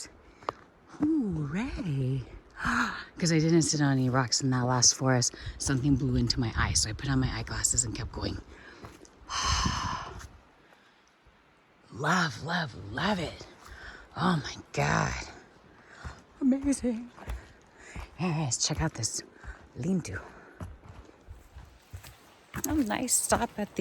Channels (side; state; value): both; identical; correlation 1.00